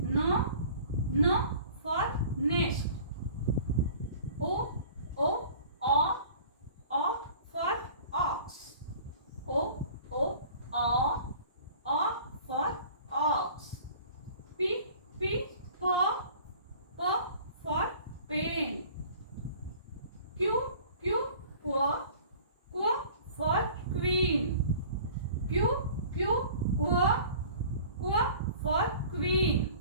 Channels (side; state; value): both; inverted; correlation -0.46